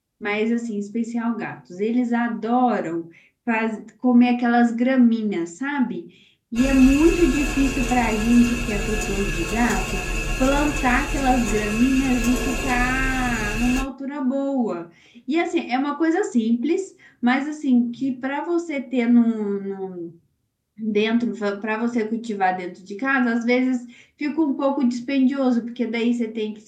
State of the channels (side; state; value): both; identical; correlation 1.00